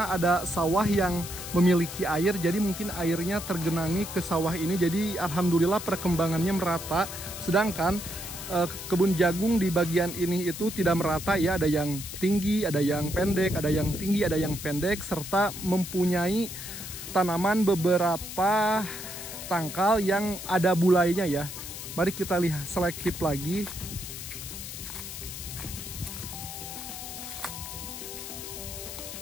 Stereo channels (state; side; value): noise; left; hiss, 9 dB below the sound